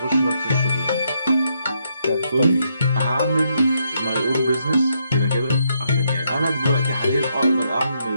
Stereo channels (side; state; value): both; inverted; correlation -0.77